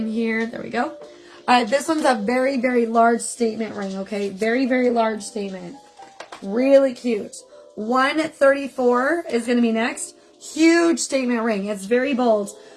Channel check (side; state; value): both; identical; correlation 1.00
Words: here. There we go. This one's a very, very large statement ring, okay? Very, very large statement. Really cute. 134 is going to be next. Huge statement ring. It's very bold.